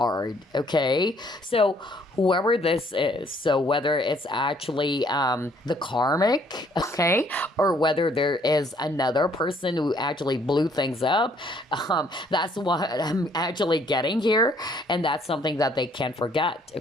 Okay, so whoever this is, so whether it's actually the karmic, okay, or whether there is another person who actually blew things up, that's what I'm actually getting here, and that's something that they can't forget.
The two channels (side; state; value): both; normal; correlation 0.64